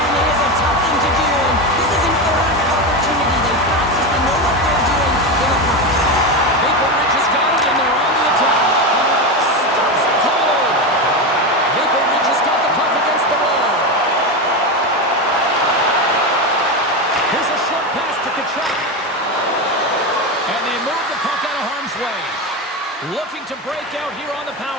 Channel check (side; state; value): both; normal; correlation 0.16